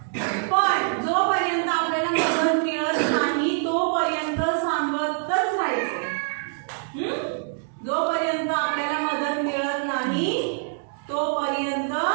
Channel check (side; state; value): left; silent; digital silence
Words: पण जोपर्यंत आपल्याला मदत मिळत नाही